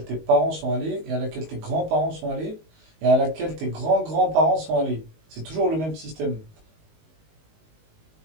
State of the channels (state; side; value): late; left; 19 ms